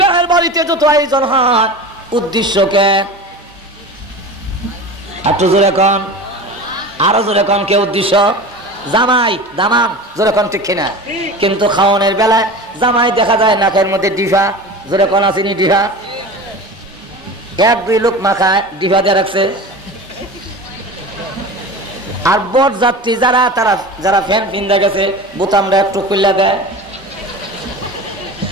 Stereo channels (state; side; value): normal; both; correlation 0.32